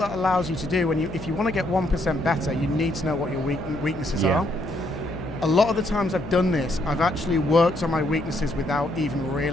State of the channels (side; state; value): left; noise; hum, 12 dB below the sound